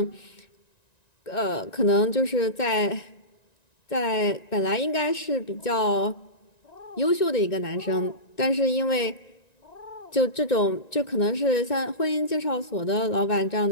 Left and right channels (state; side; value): late; right; 1.9 ms